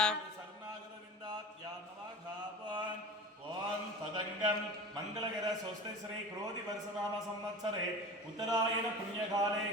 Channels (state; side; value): normal; both; correlation 0.34